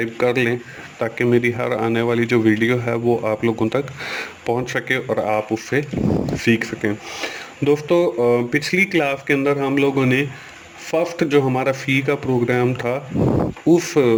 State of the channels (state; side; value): identical; both; correlation 1.00